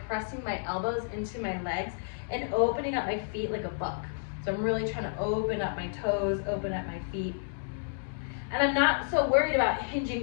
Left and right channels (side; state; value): right; silent; digital silence